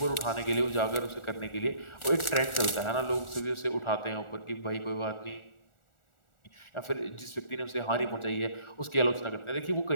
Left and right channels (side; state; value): right; late; 1.4 ms